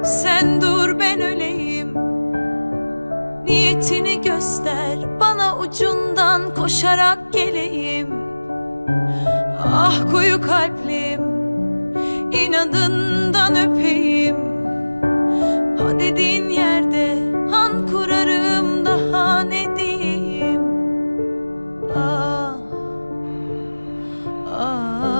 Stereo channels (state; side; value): inverted; both; correlation -1.00